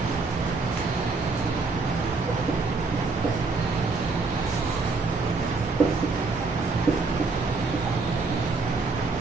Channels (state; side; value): quieter; left; 4.0 dB